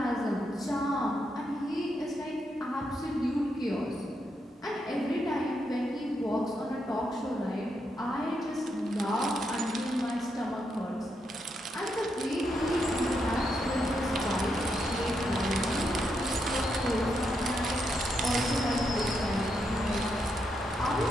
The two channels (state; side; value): normal; both; correlation 0.81